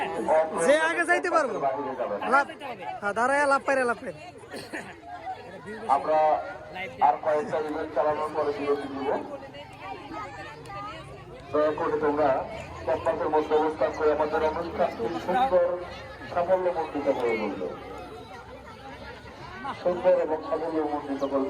যে আগে যাইতে পারবো দাঁড়ায় লাপাইরা আমরা আর কয়েকটা ইভেন্ট চালানোর পরে বিরতি দিব। দয়া করে তোমরা ক্যাম্পাসের মধ্যে অবস্থান করে আমাদের অনুষ্ঠানটি সুন্দর সাফল্যমণ্ডিত করে তুলবে, সুন্দর এবং সাফল্যমণ্ডিত করে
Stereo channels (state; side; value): identical; both; correlation 1.00